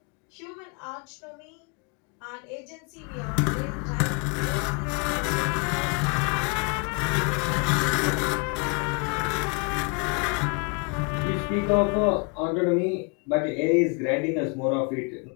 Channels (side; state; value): right; quieter; 34.3 dB